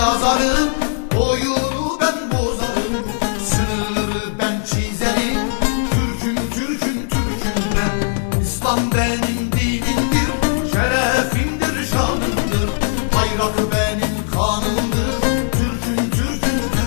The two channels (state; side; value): silent; right; 67 dB below the other